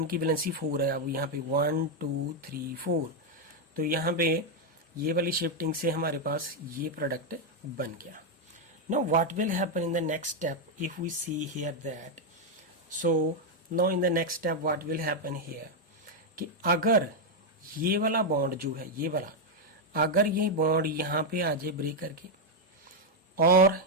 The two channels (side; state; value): both; normal; correlation 0.02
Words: की वैलेंसी 4 है। अब यहाँ पे 1 2 3 4, तो यहाँ पे ये वाली शिफ्टिंग से हमारे पास ये प्रोडक्ट बन गया। Now what will happen in the next step if we see here that, so now in the next step what will happen here, कि अगर ये वाला बॉन्ड जो है, ये वाला अगर ये बॉन्ड यहाँ पे आ जाए ब्रेक करके, और